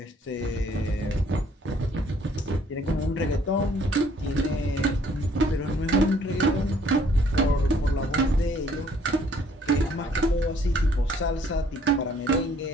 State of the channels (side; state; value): both; normal; correlation 0.62